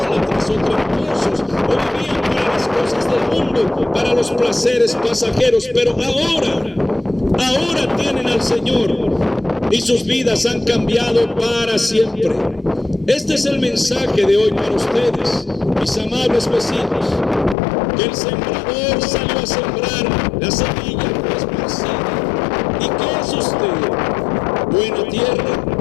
o tramposos o vivían para las cosas del mundo, para los placeres pasajeros, pero ahora tienen al Señor y sus vidas han cambiado para siempre. Este es el mensaje de hoy para ustedes, mis amables vecinos, que el sembrador salió a sembrar, la semilla fue esparcida. ¿Y qué es usted? ¿Buena tierra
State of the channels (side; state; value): right; drops out; at 17.6 s